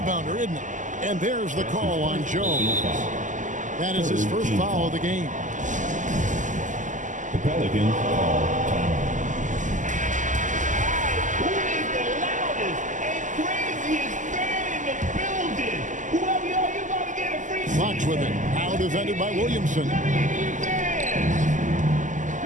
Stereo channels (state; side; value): late; left; 0.37 ms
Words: isn't it? And there's the call on Jones. That is his 1st foul of the game. The Pelicans call timeout. Fox with it. Out defended by Williamson.